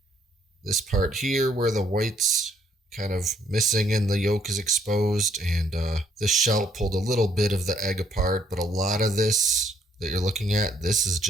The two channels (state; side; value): normal; both; correlation 0.67